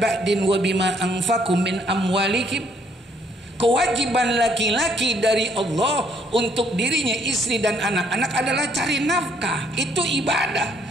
wa bima anfaqu min amwalikum. Kewajiban laki-laki dari Allah untuk dirinya, istri dan anak-anak adalah cari nafkah. Itu ibadah.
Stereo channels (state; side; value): normal; both; correlation 0.67